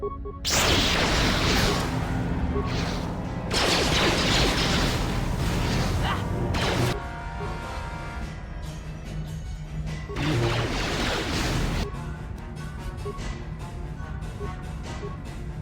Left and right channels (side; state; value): both; identical; correlation 1.00